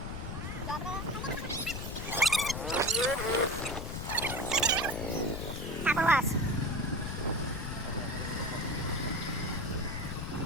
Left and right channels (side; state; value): left; noise; rumble, 5 dB below the sound